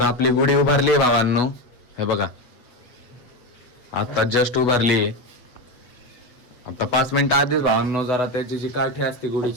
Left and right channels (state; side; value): late; right; 8.1 ms